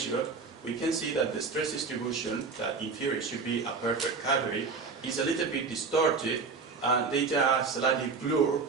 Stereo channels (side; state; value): left; quieter; 4.8 dB